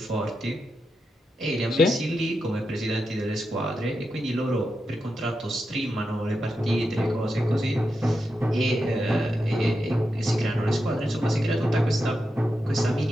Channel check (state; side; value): normal; both; correlation 0.87